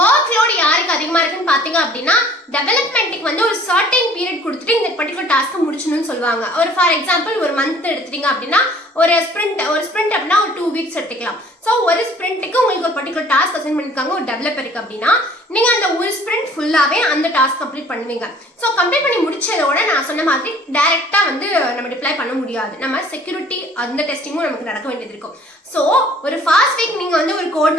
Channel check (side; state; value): both; normal; correlation 0.53